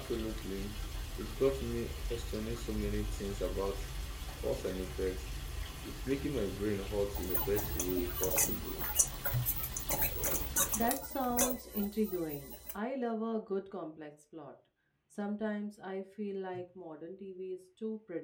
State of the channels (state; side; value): identical; both; correlation 1.00